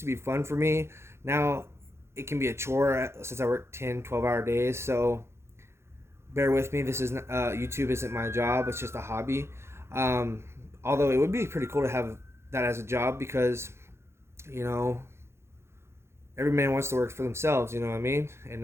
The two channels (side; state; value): left; late; 0.13 ms